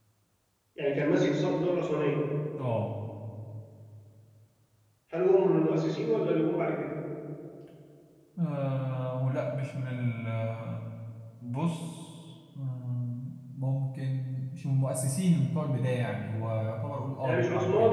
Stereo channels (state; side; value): identical; both; correlation 1.00